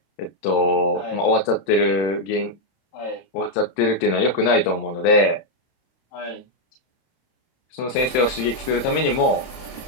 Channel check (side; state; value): right; late; 31 ms